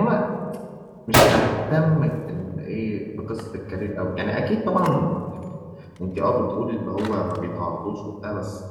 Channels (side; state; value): both; identical; correlation 1.00